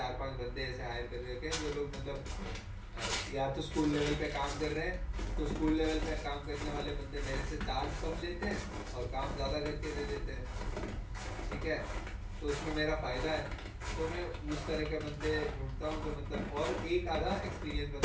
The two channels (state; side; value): identical; both; correlation 1.00